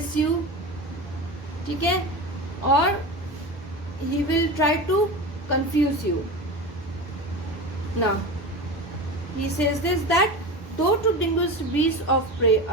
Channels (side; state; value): both; normal; correlation 0.27